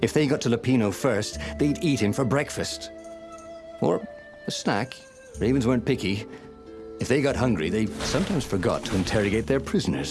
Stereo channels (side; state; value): both; identical; correlation 1.00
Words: they got to Lupino first, they'd eat him for breakfast. Or a snack. Ravens weren't picky. If they got hungry, they sometimes forgot to interrogate their